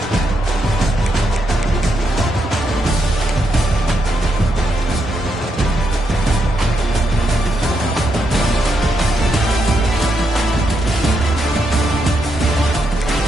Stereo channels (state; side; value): normal; both; correlation 0.80